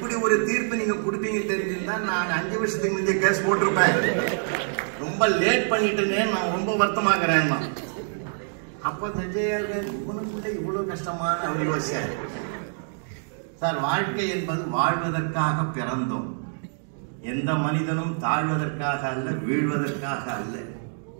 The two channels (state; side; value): silent; left; digital silence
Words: ஒரு தீர்ப்பு நீங்க கொடுப்பீங்க தெரிஞ்சிருந்தா நான் 5 வருஷத்துக்கு முந்தைய கேஸ் போட்டிருப்பேன். ரொம்ப லேட் பண்ணிட்டேன்னு நான் ரொம்ப வருத்தமாகிறேன். அப்ப இவனுக்குள்ள இவ்வளவு கஷ்டமான அவர் யோசிச்சார். சார், வாழ்க்கை என்பது வாழ்வதற்காக பிறந்தோம். எந்த மனிதனும் தாழ்வதற்காக அல்ல, வீழ்வதற்காக அல்ல.